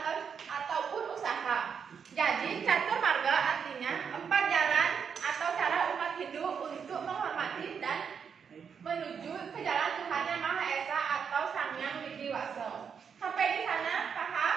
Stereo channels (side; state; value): left; quieter; 6.8 dB